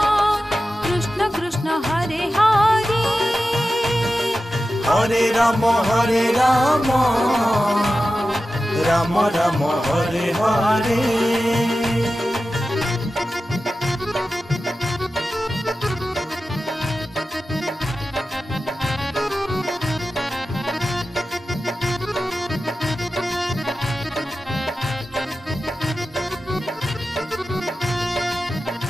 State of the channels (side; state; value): both; normal; correlation 0.93